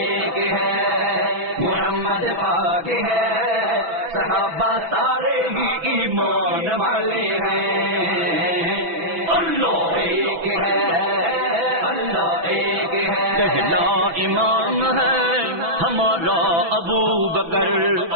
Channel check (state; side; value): late; left; 6.0 ms